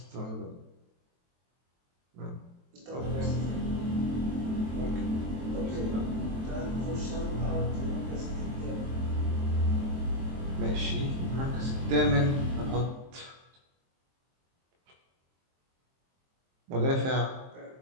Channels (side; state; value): left; late; 23 ms